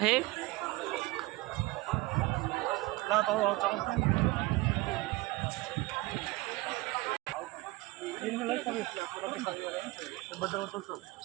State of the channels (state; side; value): quieter; left; 21.4 dB